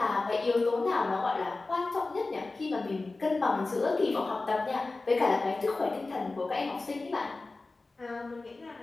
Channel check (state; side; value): quieter; right; 3.4 dB